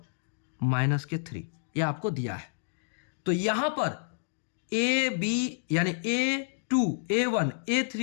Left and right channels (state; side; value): silent; right; digital silence